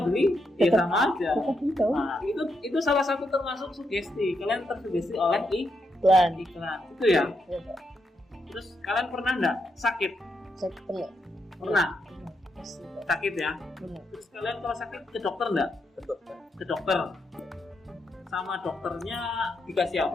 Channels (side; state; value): both; normal; correlation 0.81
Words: ya sama aja. Tahu. Nah, itu salah satu termasuk sugesti. Kalian tersugesti oleh Iklan. iklan. Itu ya. Iya, Pak. Terus kalian pernah nggak sakit? Saya pernah. Pernah. Pasti, Pak. Sakit ya. Pernah. Terus kalian kalau sakit ke dokter nggak? Betul. Ke dokter. Sama dokternya dikasih